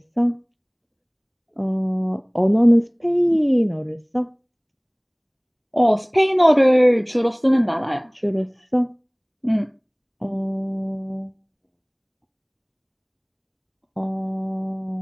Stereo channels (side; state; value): both; identical; correlation 1.00